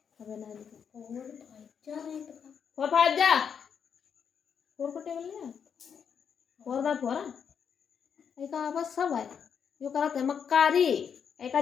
अबे ना फोर फाइव जा, फोर को टेबल ले, फोर बाय फोर एक बस सब है। यो करा थे मक्कारी एक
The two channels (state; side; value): quieter; right; 7.2 dB